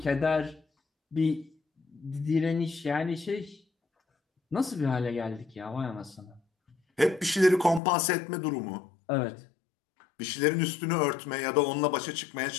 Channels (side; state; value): right; drops out; at 7.8 s